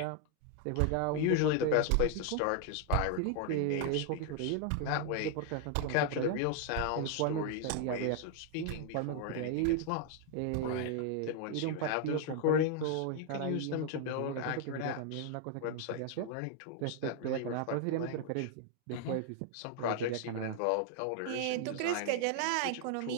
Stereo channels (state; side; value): different; both; correlation 0.00